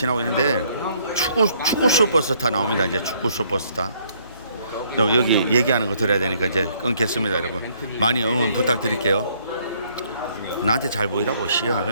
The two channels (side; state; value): both; inverted; correlation -0.66